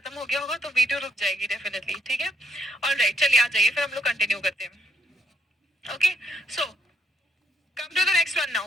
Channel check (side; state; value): both; normal; correlation 0.72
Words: हो गया होगा तो वीडियो रुक जाएगी डेफिनेटली. ठीक है. ऑलराइट, चलिए आ जाइए, फिर हम लोग कंटिन्यू करते हैं. Okay, so come to the next one